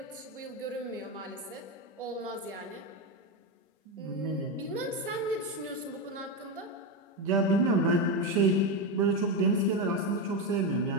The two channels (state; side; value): normal; both; correlation 0.11